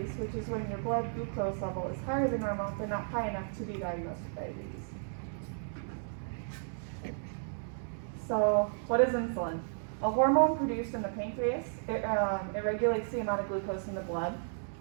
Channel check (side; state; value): left; silent; digital silence